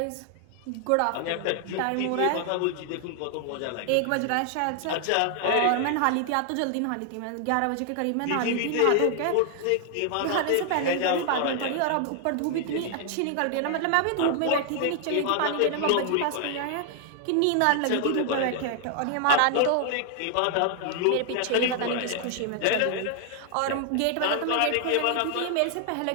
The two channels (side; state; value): both; different; correlation 0.00